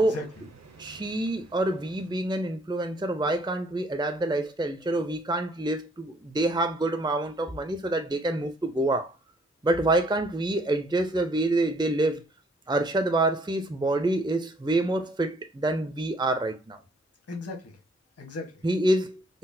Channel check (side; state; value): both; normal; correlation 0.64